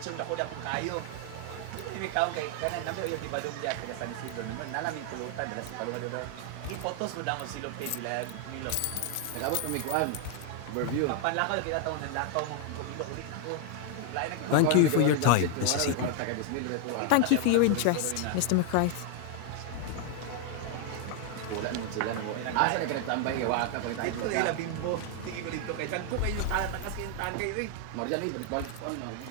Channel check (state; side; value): different; both; correlation 0.00